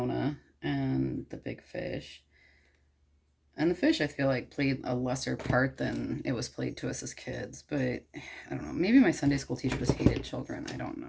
and the big fish. And the fish, I feel like, played a lesser part than it was played to us as kids. But, I don't know, maybe my Sunday school teacher just hated children. I don't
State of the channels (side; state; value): both; identical; correlation 1.00